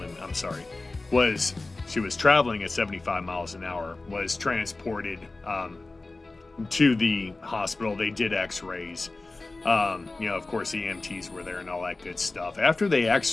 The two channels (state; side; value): quieter; right; 3.3 dB